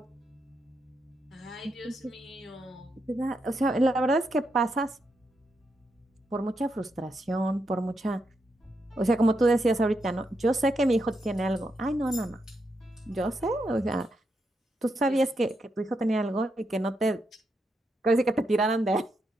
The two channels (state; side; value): normal; both; correlation 0.83